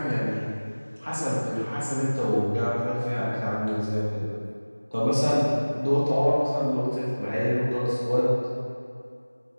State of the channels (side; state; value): both; inverted; correlation -1.00